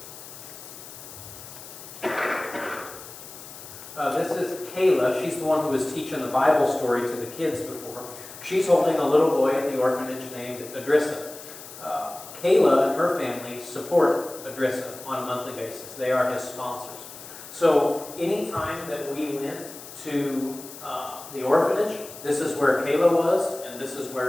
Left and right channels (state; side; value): noise; left; hiss, 15 dB below the sound